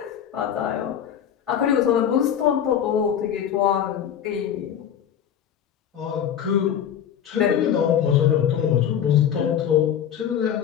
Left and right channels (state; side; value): quieter; right; 9.2 dB